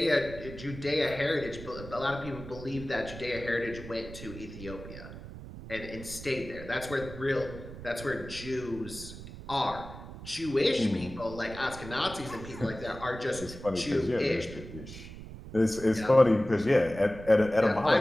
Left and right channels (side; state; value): right; noise; rumble, 13 dB below the sound